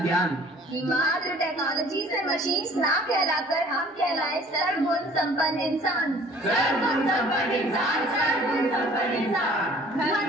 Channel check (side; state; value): both; normal; correlation 0.52